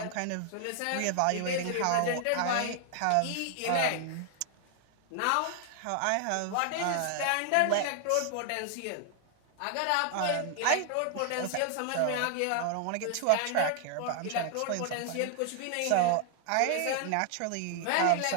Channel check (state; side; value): different; both; correlation 0.00